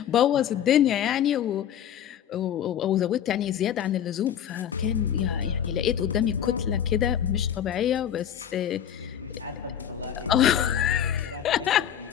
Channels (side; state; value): right; quieter; 9.6 dB